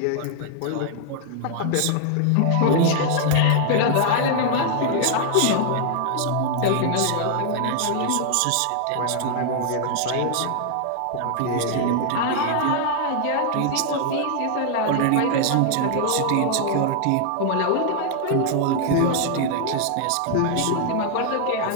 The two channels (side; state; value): both; different; correlation 0.00